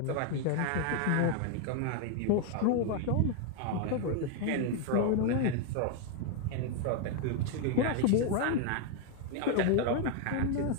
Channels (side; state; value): both; different; correlation 0.00